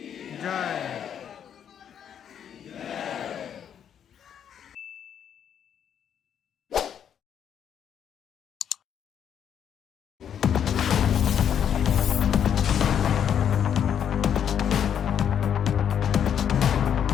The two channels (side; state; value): right; quieter; 8.7 dB